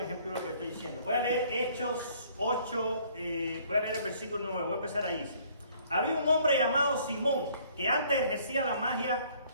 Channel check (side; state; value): both; inverted; correlation -0.60